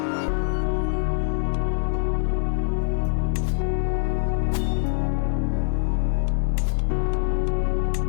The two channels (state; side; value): silent; right; 63 dB below the other